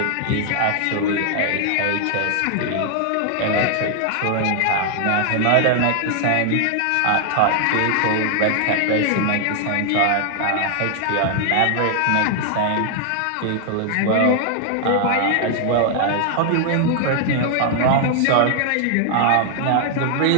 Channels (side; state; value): both; different; correlation 0.00